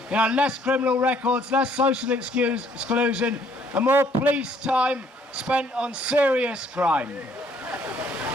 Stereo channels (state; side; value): normal; both; correlation 0.64